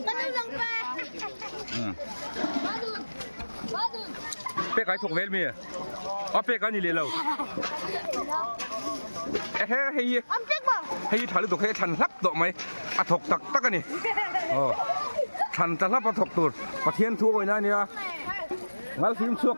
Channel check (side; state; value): both; inverted; correlation -1.00